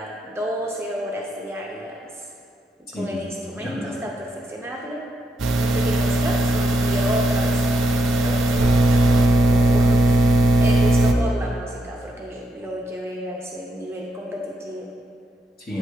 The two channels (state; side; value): normal; both; correlation 0.80